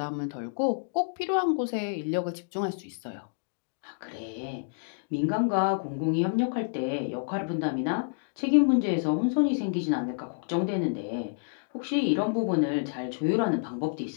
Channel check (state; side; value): silent; right; digital silence